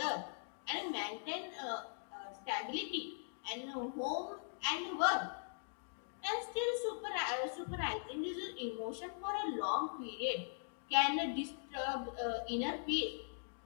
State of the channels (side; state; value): right; silent; digital silence